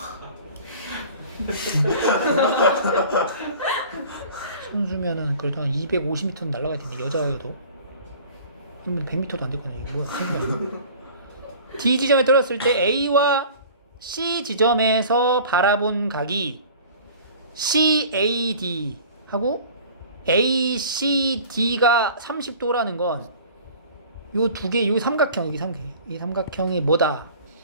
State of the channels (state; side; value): inverted; both; correlation -0.45